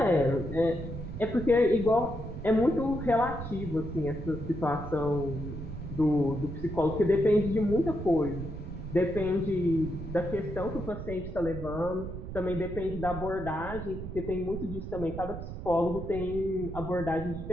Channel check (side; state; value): right; noise; rumble, 8 dB below the sound